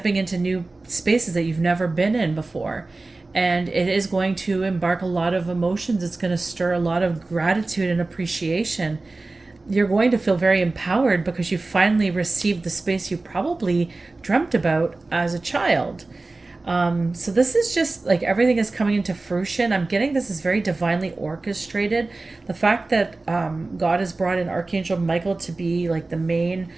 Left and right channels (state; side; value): quieter; left; 3.3 dB